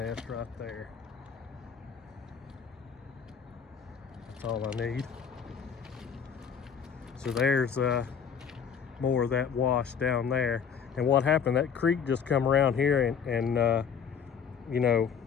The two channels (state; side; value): quieter; right; 7.0 dB